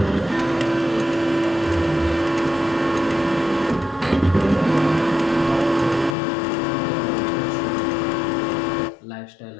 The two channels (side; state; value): right; drops out; at 6.2 s